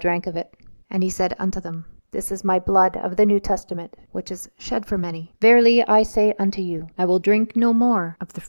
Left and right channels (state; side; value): inverted; both; correlation -1.00